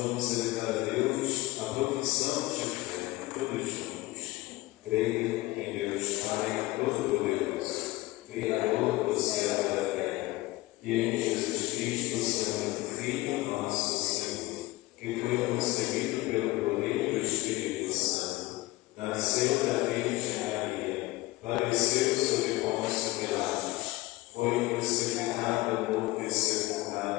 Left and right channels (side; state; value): right; quieter; 19.7 dB